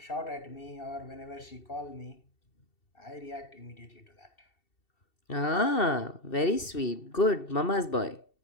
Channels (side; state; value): right; late; 2.7 ms